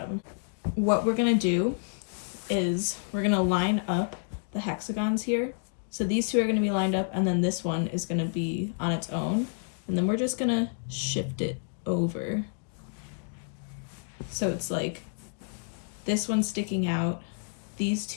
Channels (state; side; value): silent; right; digital silence